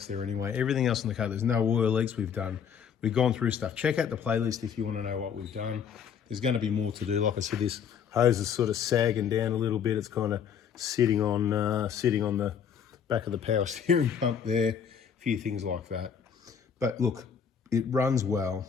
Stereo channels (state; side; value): quieter; right; 7.5 dB